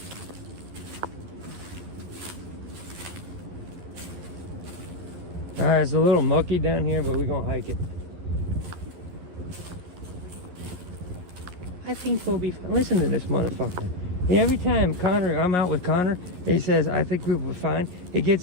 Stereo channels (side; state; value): left; late; 11 ms